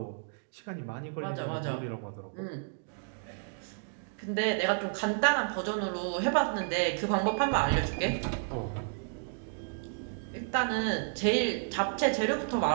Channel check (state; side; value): silent; left; digital silence